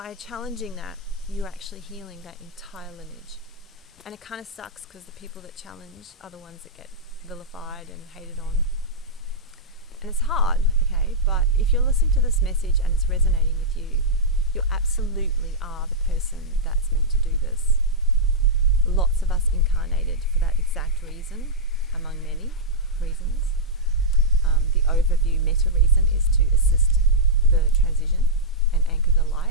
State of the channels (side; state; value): both; normal; correlation -0.09